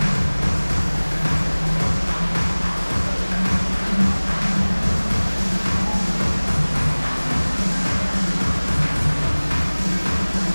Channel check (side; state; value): both; inverted; correlation -1.00